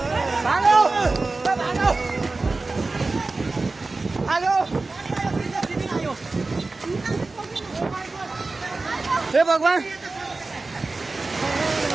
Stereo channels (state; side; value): quieter; left; 3.5 dB